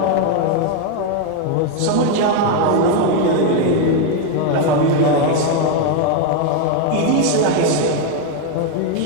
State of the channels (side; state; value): both; different; correlation 0.01